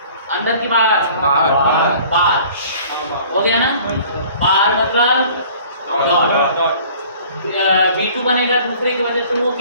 अंदर की बाहर हो गया ना। बाहर मतलब डॉट। V2 बनेगा दूसरे की वजह से, वो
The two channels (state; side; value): inverted; both; correlation -0.50